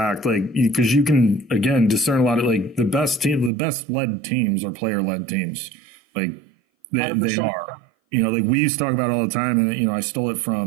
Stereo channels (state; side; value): drops out; left; at 3.5 s